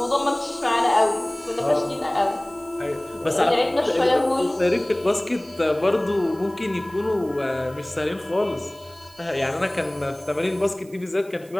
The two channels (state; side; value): noise; right; hiss, 25 dB below the sound